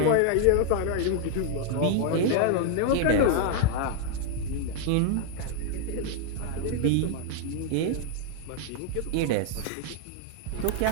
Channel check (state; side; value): different; both; correlation 0.00